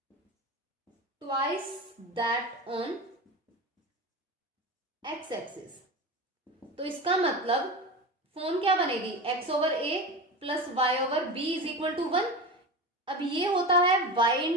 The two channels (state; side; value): normal; both; correlation 0.26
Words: twice that on x axis. तो इसका मतलब फॉर्म क्या बनेगी, x over a plus y over b is equal to 1। अब ये होता है y